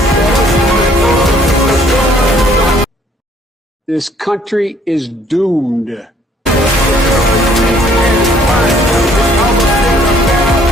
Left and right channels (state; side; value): normal; both; correlation 0.62